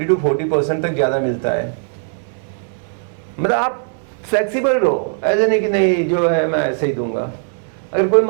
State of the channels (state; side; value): silent; left; 67 dB below the other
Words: तक ज़्यादा मिलता है। मतलब आप फ्लेक्सिबल रहो, ऐसे नहीं कि नहीं जो है मैं ऐसे ही दूंगा। अगर कोई